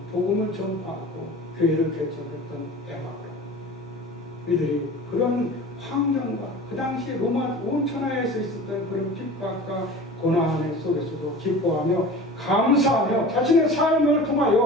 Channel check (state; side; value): normal; both; correlation 0.38